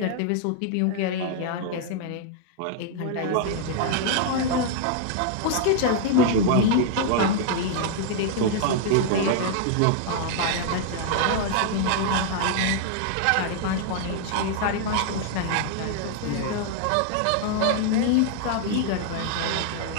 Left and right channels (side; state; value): both; different; correlation -0.01